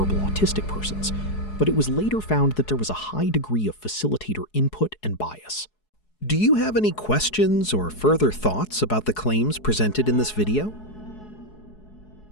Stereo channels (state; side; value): late; right; 4.7 ms